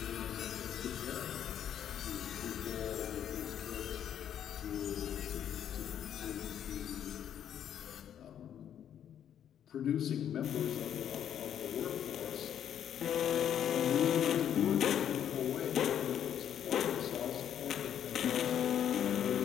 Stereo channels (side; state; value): right; quieter; 9.7 dB